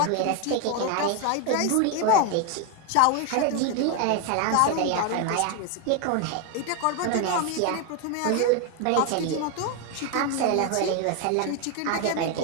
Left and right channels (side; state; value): both; different; correlation 0.01